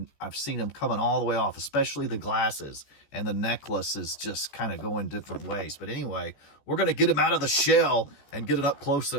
I've seen them coming all the way off, especially the glasses, and the necklace is just kind of going different ways. But anyway, we're going to get him out of the shell and get an up close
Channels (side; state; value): right; late; 14 ms